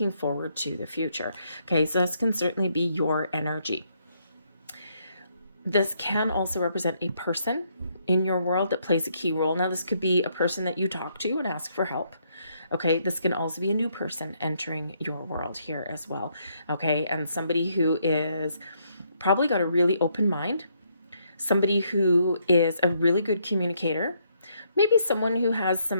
forward to the future. Okay, so this can certainly be your energy. This can also represent a person in your world that plays a key role. Now, this could be a person that you talk to and ask for help. Okay, this can also be a new person entering your world here as well. Okay, and somebody who is probably got a really open mind, somebody who is a really good communicator, maybe someone who has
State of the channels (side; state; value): both; inverted; correlation -0.73